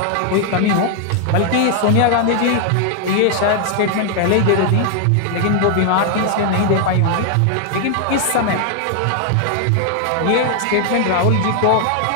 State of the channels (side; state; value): both; different; correlation 0.00